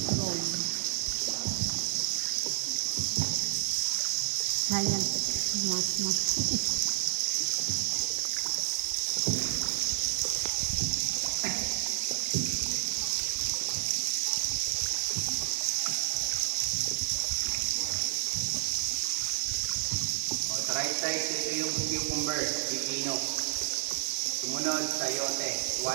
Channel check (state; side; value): silent; left; 58 dB below the other